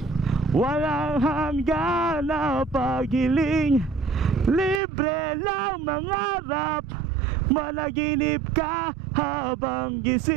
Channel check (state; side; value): drops out; left; at 4.8 s